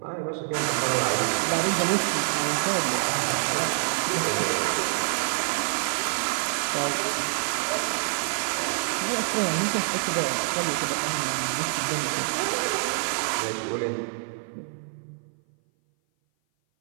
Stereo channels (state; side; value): silent; left; 57 dB below the other